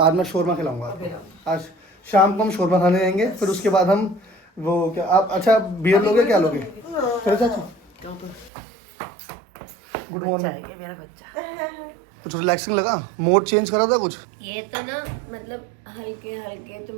मैं शोरमा खिलाऊंगा आपको। आज शाम को हम शोरमा खाने जाएंगे, फिर उसके बाद हम वो क्या आप अच्छा बियर लोगे, क्या लोगे? चलो चाचा। Good morning. ये मेरा बच्चा। कुछ रिलैक्सिंग लगा? मोड चेंज करा था कुछ? ये तो ना मतलब हल्के हल्के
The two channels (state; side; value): drops out; left; at 8.5 s